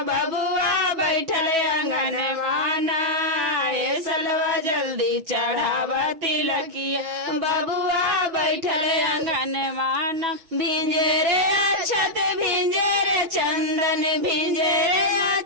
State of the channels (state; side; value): late; left; 6.2 ms